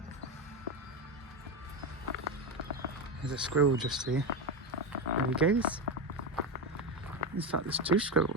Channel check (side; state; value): both; normal; correlation 0.13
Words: There's a squirrel just here. There he goes. In fact, there's two